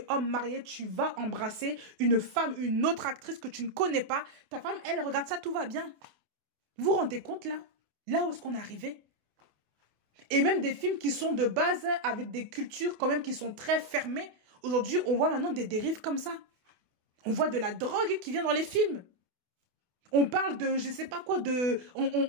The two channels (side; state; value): left; late; 28 ms